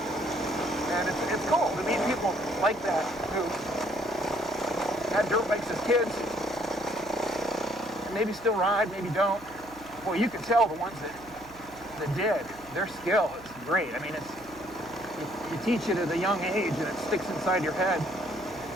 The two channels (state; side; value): noise; right; hum, 22 dB below the sound